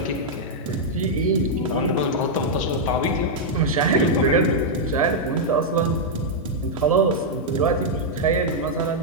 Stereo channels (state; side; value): normal; both; correlation -0.04